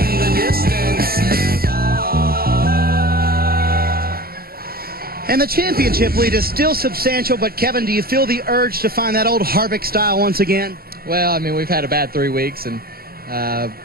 the distance. And the championship lead is still substantial, but Kevin, do you feel the urge to find that old Harvick style once again? Well, I mean, we've had a bad 3 weeks, and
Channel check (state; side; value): late; left; 0.44 ms